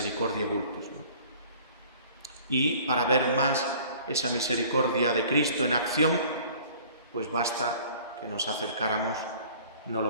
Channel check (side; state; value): both; inverted; correlation -0.50